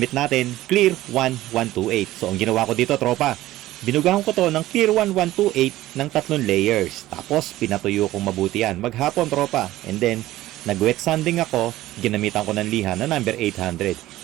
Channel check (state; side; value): quieter; left; 15.8 dB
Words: natin, Clear 1128. So, ang ginawa ko dito, tropa, binugahan ko to ng Clear 1128 ng 3 layers. Tapos, pinatuyo kong mabuti yan. Maghapon, tropa. And then, nag-wet sanding ako, ginamitan ko ng liha na number